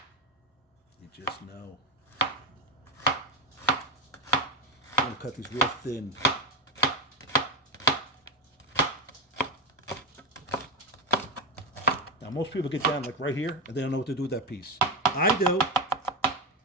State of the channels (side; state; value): both; normal; correlation 0.13